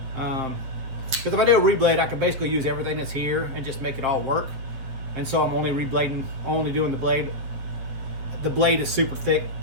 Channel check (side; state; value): left; late; 8.0 ms